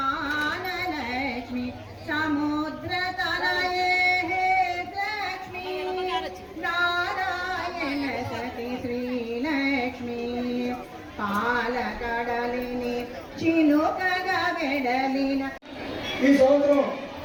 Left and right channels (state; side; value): identical; both; correlation 1.00